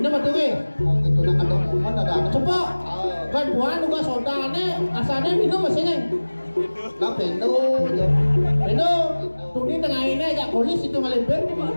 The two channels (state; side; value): inverted; both; correlation -1.00